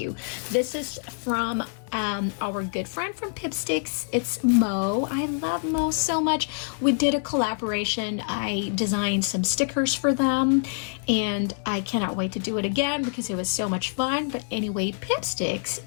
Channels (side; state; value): right; silent; digital silence